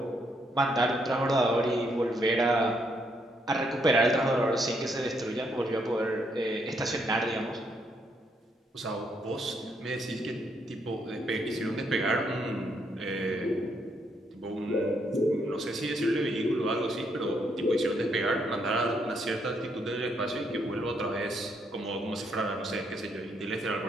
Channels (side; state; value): both; normal; correlation 0.74